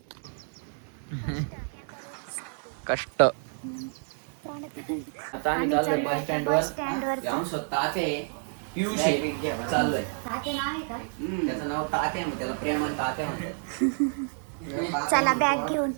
कष्ट. आम्ही चाललोय आता बस स्टँड वर. चाललोय. त्याचं नाव तात्या, त्याला प्रेमान तात्या म्हणतात. चला बॅग घेऊन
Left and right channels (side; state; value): left; silent; 59 dB below the other